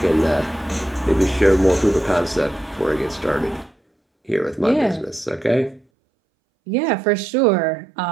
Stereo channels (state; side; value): drops out; left; at 5.8 s